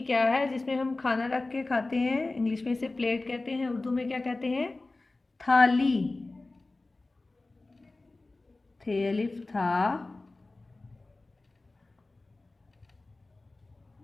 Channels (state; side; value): quieter; right; 3.2 dB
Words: क्या है, जिसमें हम खाना रख के खाते हैं। इंग्लिश में इसे प्लेट कहते हैं, उर्दू में क्या कहते हैं, थाली, थे अलिफ था,